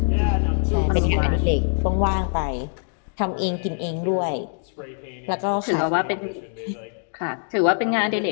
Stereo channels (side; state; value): right; silent; 63 dB below the other